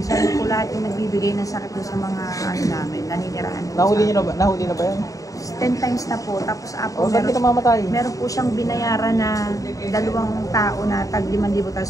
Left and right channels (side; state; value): right; late; 0.16 ms